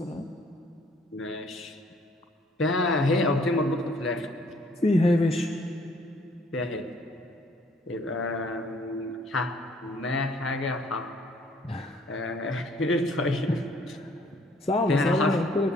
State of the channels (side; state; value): both; normal; correlation 0.61